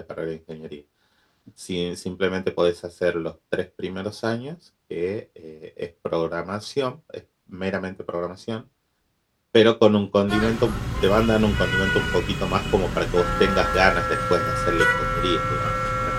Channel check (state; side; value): identical; both; correlation 1.00